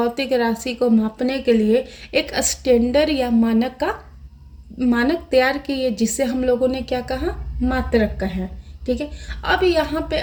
राशि को मापने के लिए एक स्टैंडर्ड या मानक का मानक तैयार किए जिसे हम लोगों ने क्या कहा, मात्रक कहा। ठीक है, अब यहाँ पे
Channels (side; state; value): both; identical; correlation 1.00